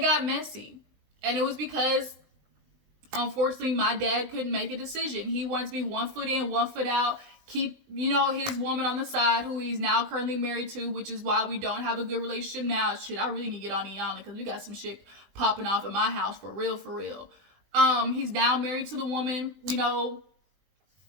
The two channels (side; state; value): left; late; 20 ms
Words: messy. And it was because, unfortunately, my dad couldn't make a decision. He wanted to be 1 foot in, 1 foot out, keep, his woman on the side, who he's now currently married to, which is why we don't have a good relationship now. Shit, I really need to get on Iyanla, because we got some shit popping off in my house for real, for real. He's now married to the woman,